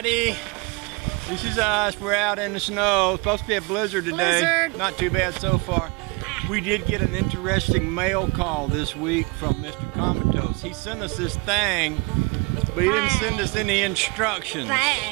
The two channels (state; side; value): quieter; left; 28.5 dB